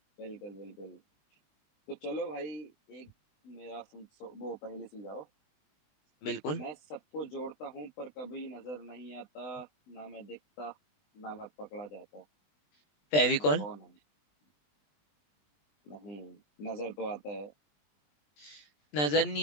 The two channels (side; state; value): right; late; 20 ms